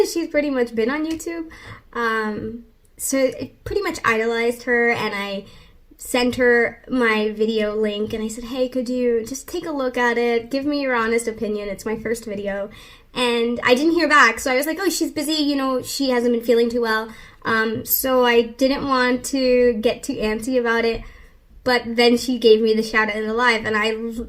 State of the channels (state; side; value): identical; both; correlation 1.00